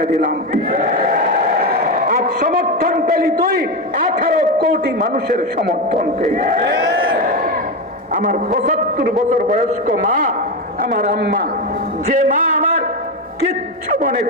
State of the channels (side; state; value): both; normal; correlation 0.14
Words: দিলাম। আর সমর্থন পেলি তুই 18 কোটি মানুষের সমর্থন পেলি। আমার 75 বছর বয়স্ক মা, আমার আম্মা, যে মা আমার কিচ্ছু